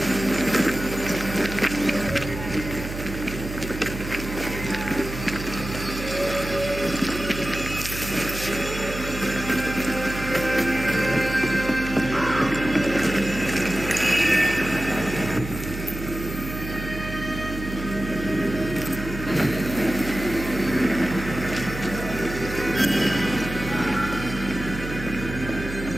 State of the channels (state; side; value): noise; right; hum, 8 dB below the sound